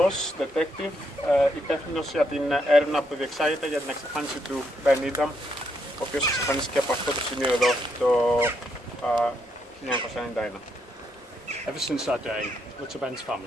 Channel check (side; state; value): both; normal; correlation 0.77